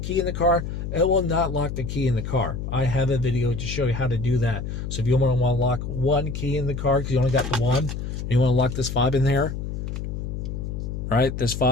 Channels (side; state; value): left; noise; hum, 5 dB below the sound